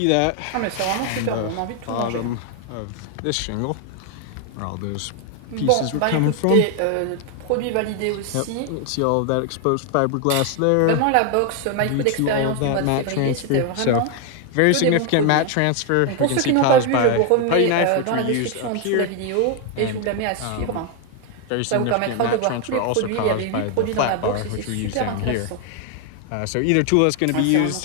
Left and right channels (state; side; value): different; both; correlation 0.01